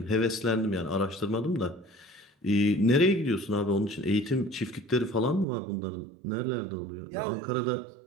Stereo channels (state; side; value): drops out; left; at 5.5 s